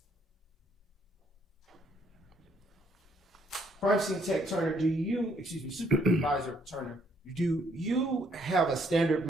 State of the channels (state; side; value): normal; both; correlation 0.68